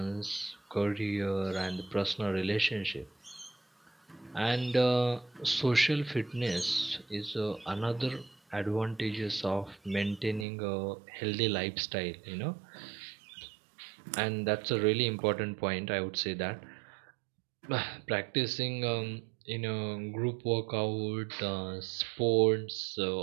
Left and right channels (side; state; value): left; drops out; at 10.5 s